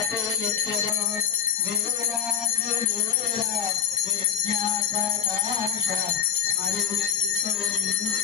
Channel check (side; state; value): right; quieter; 8.3 dB